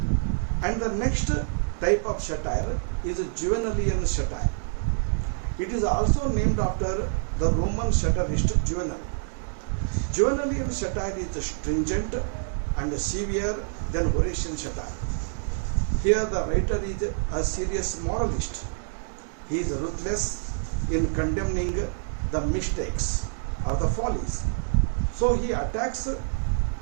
And the next type of satire is Juvenalian satire. It is also named after the Roman satirist Juvenal. Juvenalian satire is stringent and severe than Horatian satire. Here the writer is a serious moralist. He is ruthless in condemning the mistakes or the follies. So he attacks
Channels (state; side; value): silent; left; digital silence